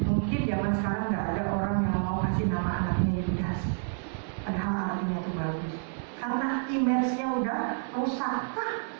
Mungkin zaman sekarang nggak ada orang yang mau kasih nama anaknya Yudas, padahal artinya itu bagus. Karena image-nya udah rusak,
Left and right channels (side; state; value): left; silent; digital silence